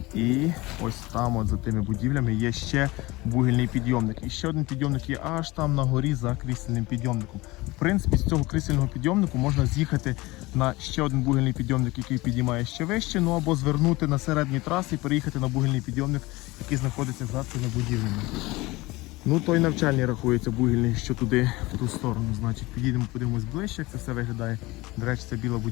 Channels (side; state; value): right; quieter; 21.2 dB